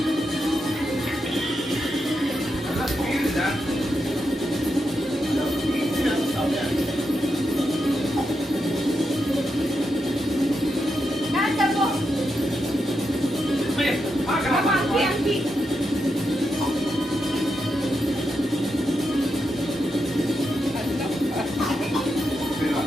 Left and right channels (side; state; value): both; normal; correlation 0.85